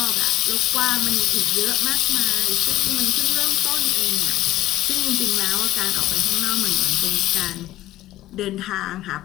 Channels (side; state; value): right; quieter; 15.0 dB